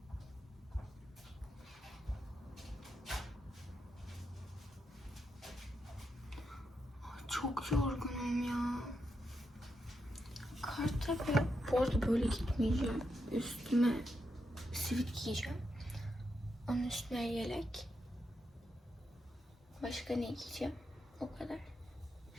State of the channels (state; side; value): normal; both; correlation 0.84